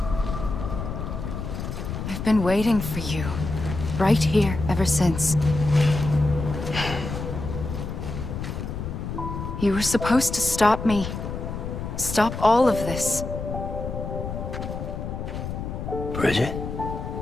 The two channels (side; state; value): left; noise; rumble, 6 dB below the sound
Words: I've been waiting for you, right here, ever since. You were supposed to stop me. Stop all of this. Bridget?